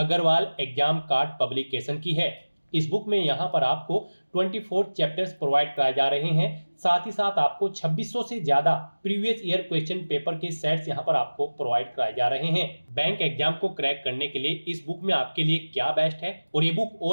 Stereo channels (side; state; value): both; inverted; correlation -1.00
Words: एग्जाम कार्ड पब्लिकेशन की है। इस बुक में यहाँ पर आपको 24 चैप्टर्स प्रोवाइड कराए जा रहे हैं। साथ ही साथ आपको 2600 से ज्यादा प्रीवियस ईयर क्वेश्चन पेपर के सेट्स यहाँ पर आपको प्रोवाइड कराए जा रहे हैं। बैंक एग्जाम को क्रैक करने के लिए इस बुक में आपके लिए क्या बेस्ट है और ये बुक